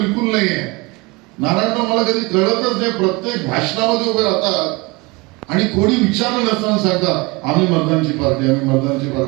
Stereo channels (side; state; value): left; quieter; 25.1 dB